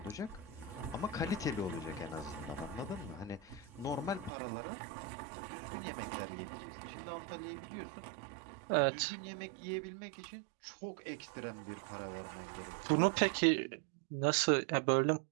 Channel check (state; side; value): drops out; left; at 4.3 s